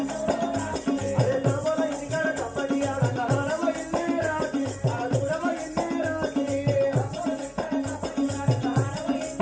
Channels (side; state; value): both; identical; correlation 1.00